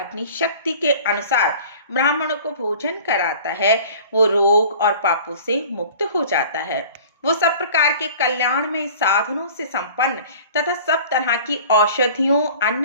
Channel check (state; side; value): inverted; both; correlation -0.44